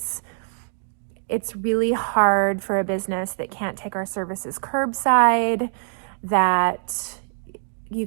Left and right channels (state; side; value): silent; left; digital silence